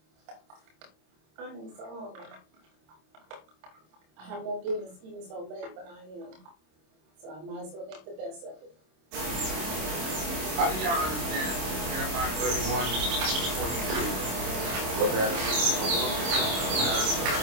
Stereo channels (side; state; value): left; late; 26 ms